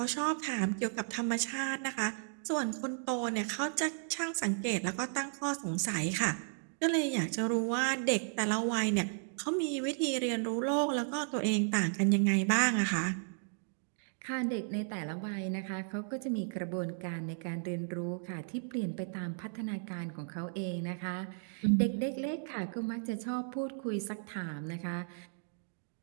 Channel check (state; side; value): silent; left; digital silence